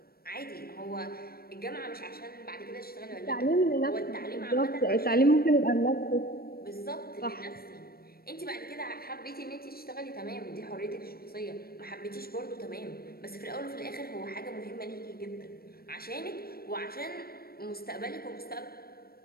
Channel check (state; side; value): late; right; 0.44 ms